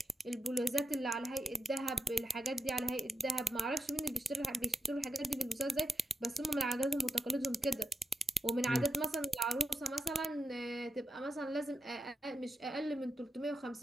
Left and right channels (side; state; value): both; normal; correlation 0.88